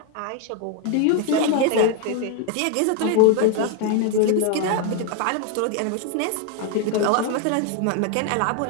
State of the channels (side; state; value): both; different; correlation 0.01